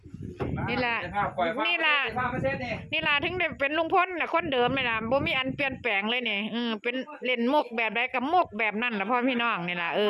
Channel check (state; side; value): identical; both; correlation 1.00